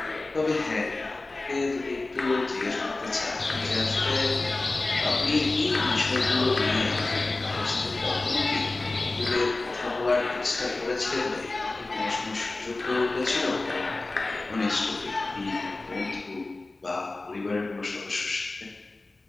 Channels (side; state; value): right; quieter; 3.2 dB